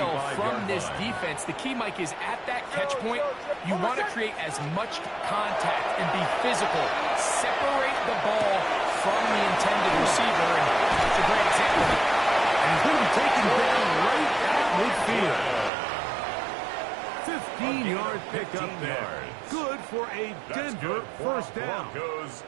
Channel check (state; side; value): drops out; left; at 15.7 s